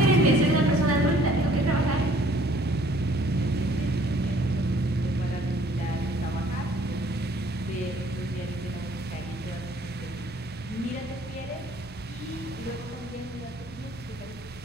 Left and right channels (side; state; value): both; normal; correlation 0.58